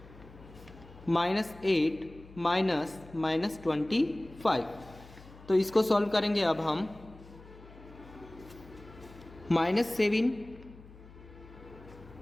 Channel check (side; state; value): left; noise; hum, 20 dB below the sound